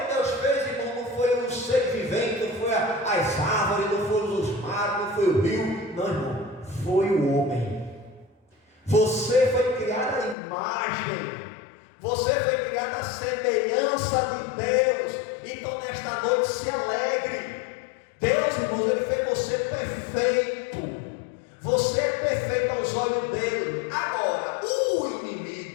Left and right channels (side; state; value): right; drops out; at 10.4 s